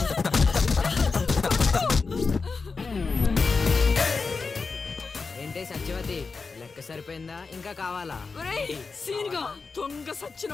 ఏంటే సత్యవతి, లెక్క సరిపోయిందా? ఇంకా కావాలా? సీన్గా దొంగ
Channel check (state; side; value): quieter; right; 4.5 dB